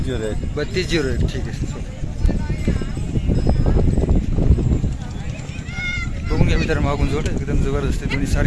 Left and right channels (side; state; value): both; identical; correlation 1.00